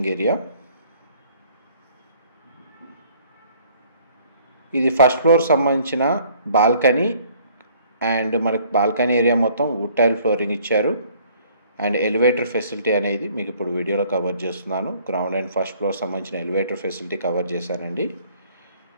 ఏరియా. ఇది ఫస్ట్ ఫ్లోర్ సంబంధించిన బాల్కనీ. అండ్ మనకు బాల్కనీ ఏరియా మొత్తం వుడ్ టైల్ ఫ్లోరింగ్ ఇచ్చారు. అండ్ ఎలివేటర్ ఫెసిలిటీ అనేది మీకు ఇప్పుడు వీడియోలో కవర్ చేస్తున్నాను. గ్రౌండ్ అండ్ ఫస్ట్ ఫ్లోర్ సంబంధించిన ఎలివేటర్ ఫెసిలిటీ కవర్ చేశానండి.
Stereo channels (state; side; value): inverted; both; correlation -0.59